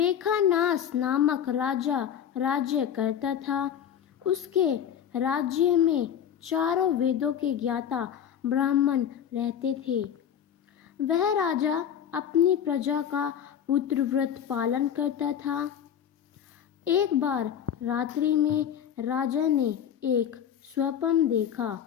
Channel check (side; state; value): right; quieter; 9.0 dB